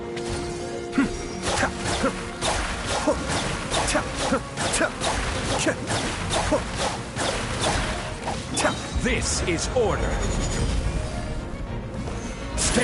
This is order.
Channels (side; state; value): both; identical; correlation 1.00